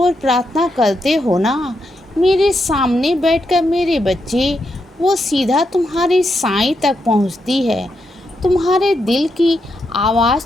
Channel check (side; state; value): both; normal; correlation 0.82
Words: प्रार्थना करते हो ना, मेरे सामने बैठकर मेरे बच्चे, वो सीधा तुम्हारे साईं तक पहुंचती है। तुम्हारे दिल की आवाज़